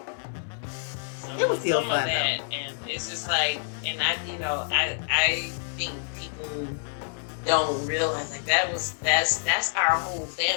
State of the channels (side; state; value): right; silent; digital silence